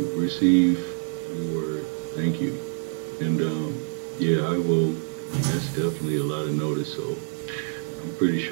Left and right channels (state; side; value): silent; left; 61 dB below the other